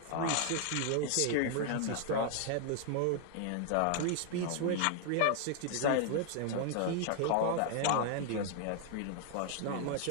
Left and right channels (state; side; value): different; both; correlation 0.00